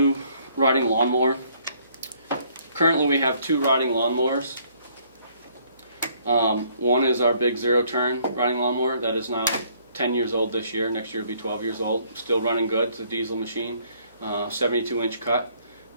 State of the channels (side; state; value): both; inverted; correlation -0.64